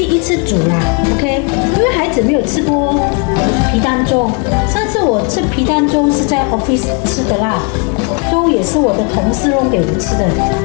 一次煮啦 ，OK， 因为孩子没有吃过皮蛋粥，上次我吃皮蛋粥是在 office 吃的啦，粥也是我的同事弄给我吃的，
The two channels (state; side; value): quieter; right; 33.7 dB